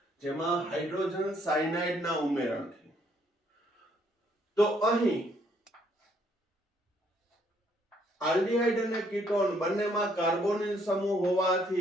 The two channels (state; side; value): normal; both; correlation 0.68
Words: જેમાં હાઇડ્રોજન સાયનાઇડના ઉમેરણથી. તો અહીં આલ્ડીહાઇડ અને કીટોન બંનેમાં કાર્બોનિલ સમૂહ